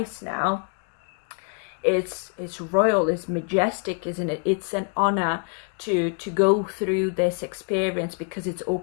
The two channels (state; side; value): quieter; right; 38.0 dB